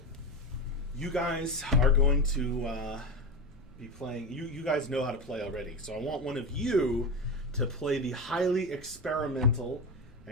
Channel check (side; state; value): both; normal; correlation 0.19